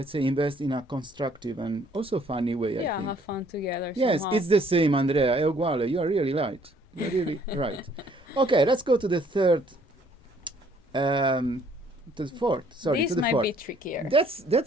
say, invest in a constructive and also funny way, I Yeah, think. have fun together. Yes, somehow. it's the same, Andrea. È uguale. You are really right. You're really right. Okay, let's go to the third. To the fourth. Sorry, This to the might fourth. be trickier. That's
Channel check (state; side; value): normal; both; correlation 0.62